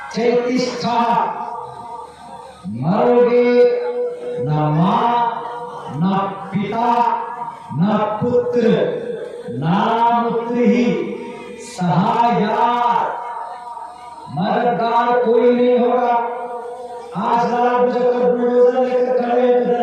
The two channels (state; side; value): identical; both; correlation 1.00